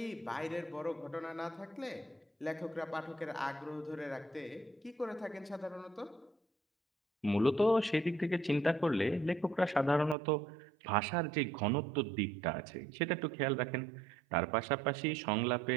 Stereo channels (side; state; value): left; drops out; at 10.2 s